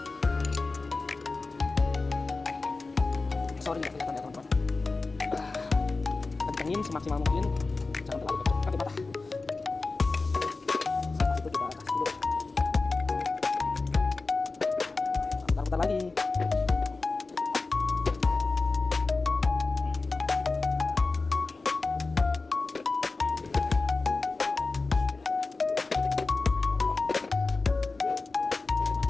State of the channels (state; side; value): quieter; right; 3.7 dB